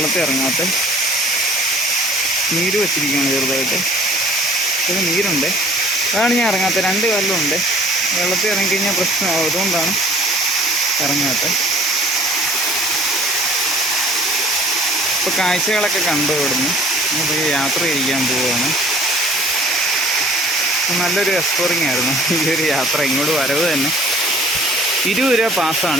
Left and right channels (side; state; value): both; normal; correlation 0.52